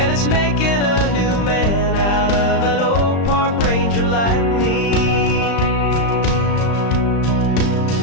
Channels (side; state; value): right; late; 35 ms